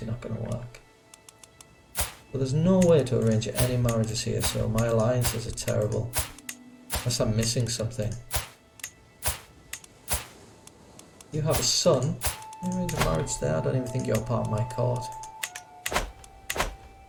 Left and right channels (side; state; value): both; identical; correlation 1.00